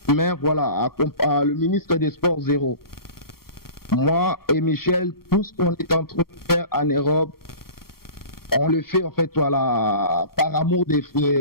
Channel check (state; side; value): late; right; 0.94 ms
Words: mais voilà, le ministre des Sports, zéro. Moi et Michel, tout ce qu'on est en train de faire en Europe, on le fait en fait voilà par amour